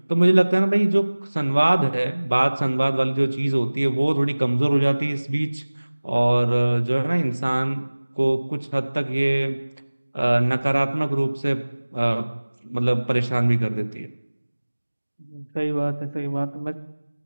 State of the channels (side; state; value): both; inverted; correlation -1.00